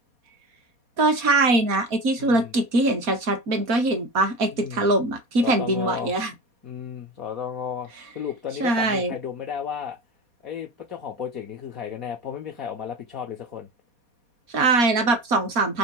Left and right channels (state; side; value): late; left; 4.2 ms